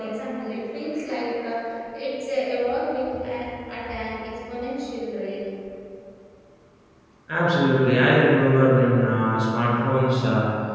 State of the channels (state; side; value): identical; both; correlation 1.00